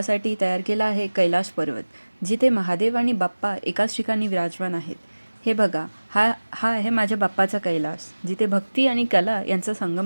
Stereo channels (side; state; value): both; inverted; correlation -1.00